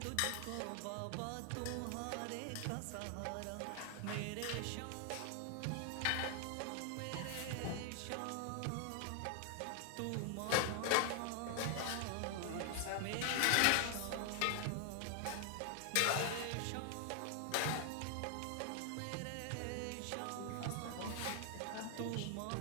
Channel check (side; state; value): both; different; correlation 0.00